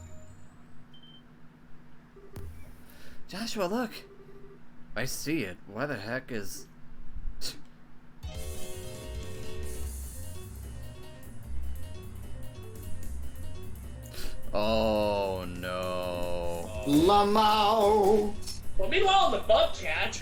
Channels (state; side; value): identical; both; correlation 1.00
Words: Joshua, look! I see it. Why the heck is... Oh no. Lamau! Well, meanwhile, the bobcat.